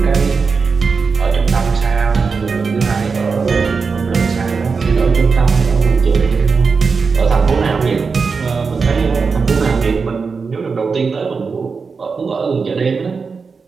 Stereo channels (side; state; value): left; quieter; 5.0 dB